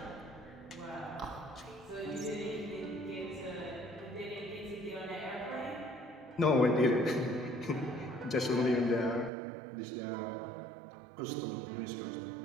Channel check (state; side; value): drops out; left; at 9.3 s